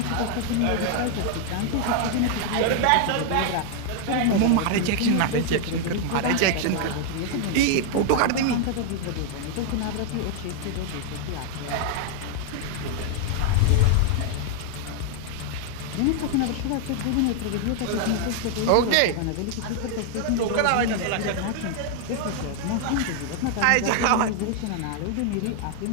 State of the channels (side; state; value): both; different; correlation 0.00